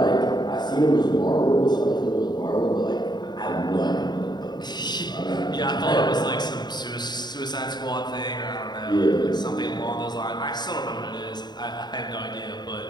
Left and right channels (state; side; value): late; right; 0.21 ms